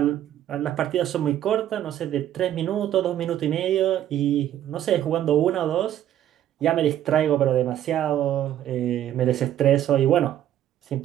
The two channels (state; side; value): quieter; left; 11.6 dB